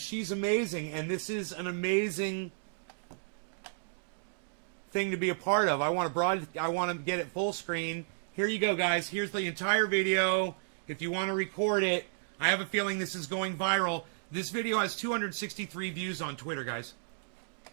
amazing, and this is an amazing thing to be a part of. I want to get it full screen. Here you go, guys. Here's the entire video. If you want to record it, I have a feeling this is going viral. This video has 263 views on Twitter, guys.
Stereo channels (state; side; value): silent; left; digital silence